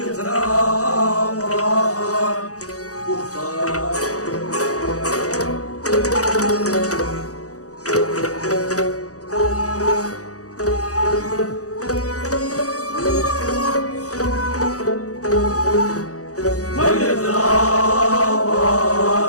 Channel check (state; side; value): late; right; 0.66 ms